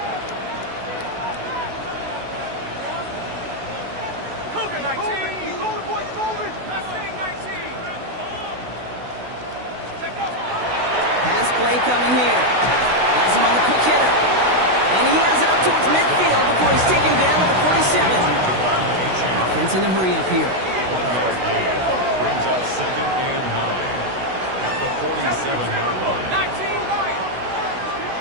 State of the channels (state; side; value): late; left; 16 ms